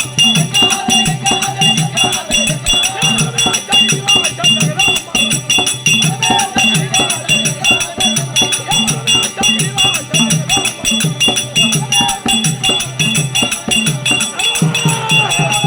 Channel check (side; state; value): both; identical; correlation 1.00